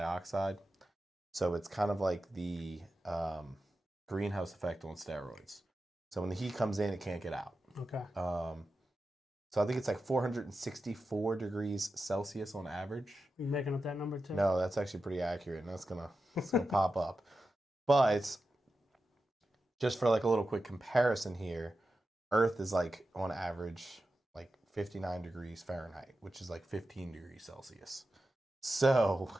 So it's kind of like the greenhouse effect on steroids. So when the heat comes in, it can't get out. Okay. So I think it's like 464 degrees Celsius on average. You making up that number too? No, that's actually pretty accurate, and that's gonna pop up. But just for like a little quick comparison here, Earth is like on average like 59 degrees Fahrenheit, which is like 15 degrees Celsius. So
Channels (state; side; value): normal; both; correlation 0.91